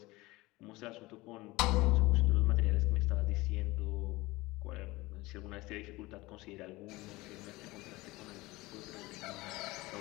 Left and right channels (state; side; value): quieter; right; 20.8 dB